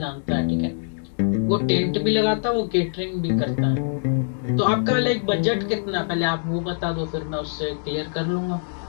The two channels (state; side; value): silent; right; digital silence